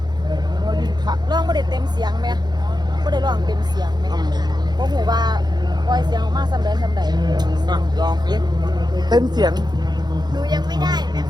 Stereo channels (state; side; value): late; left; 0.20 ms